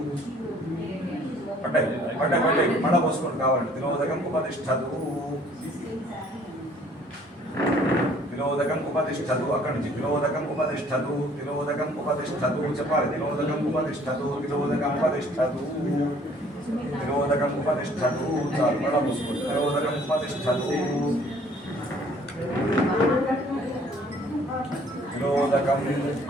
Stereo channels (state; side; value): normal; both; correlation 0.58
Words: పడ్డాయి మళ్ళా పోసుకోండి కావాలండి తిరోదకం ఉపతిష్టదు అక్కడి నుంచి తిరోదకం ఉపతిష్టదు చెప్పాలి తిరోదకం ఉపతిష్టదు చాలు మళ్ళా పోసుకోండి